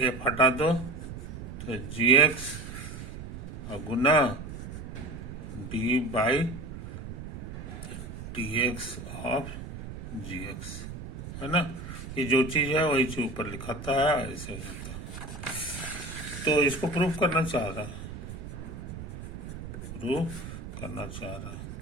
एफ हटा दो तो जी एक्स और गुना D by D X of G X, है ना। ये जो चीज है वही चीज ऊपर लिखाता है, ऐसे हो जाता है। तो इसको प्रूफ करना चाह रहा है,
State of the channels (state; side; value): noise; right; rumble, 10 dB below the sound